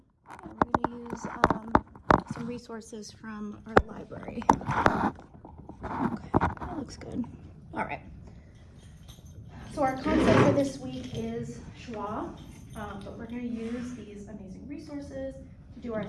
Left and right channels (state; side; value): identical; both; correlation 1.00